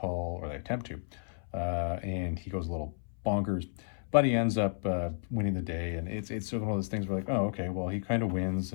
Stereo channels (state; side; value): silent; right; 56 dB below the other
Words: or they attempt to, and he goes a little bonkers. But he ends up winning the day, and it's sort of one of those things where, like, oh, okay, well, he kind of wins,